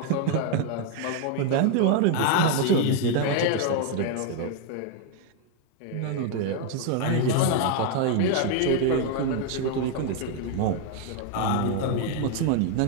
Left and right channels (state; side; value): different; both; correlation 0.00